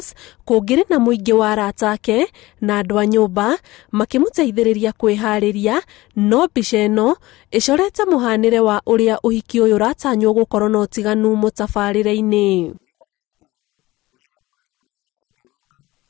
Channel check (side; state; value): right; quieter; 19.1 dB